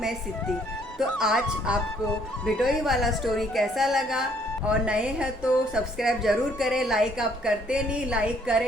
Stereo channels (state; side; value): normal; both; correlation 0.65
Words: सित्ती। तो आज आपको भिटोई वाला स्टोरी कैसा लगा? और नए हैं तो सब्सक्राइब ज़रूर करें। लाइक आप करते नहीं, लाइक